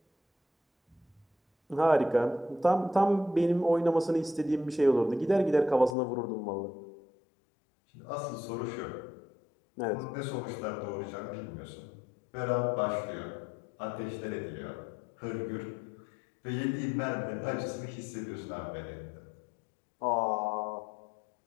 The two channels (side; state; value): right; drops out; at 6.0 s